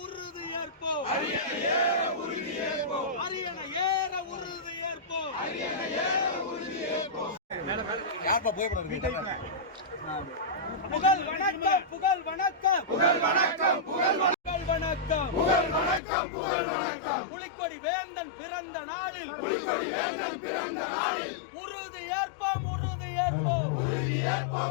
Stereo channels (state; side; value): drops out; right; at 16.0 s